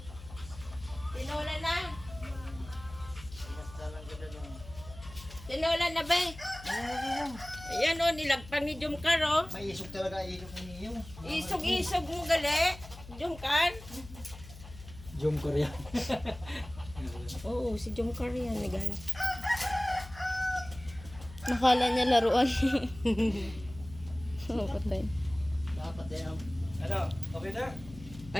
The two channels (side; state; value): left; noise; hum, 16 dB below the sound